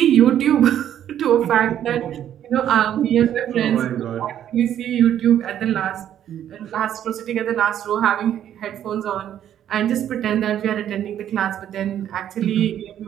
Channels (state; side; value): quieter; left; 10.5 dB